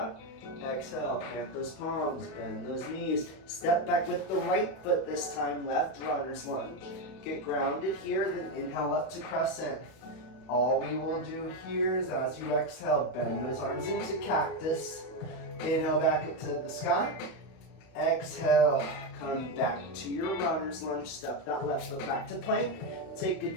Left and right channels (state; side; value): late; right; 31 ms